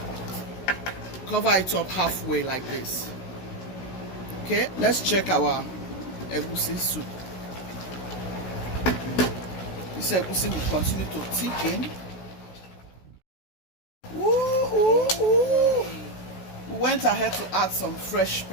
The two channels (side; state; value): right; late; 16 ms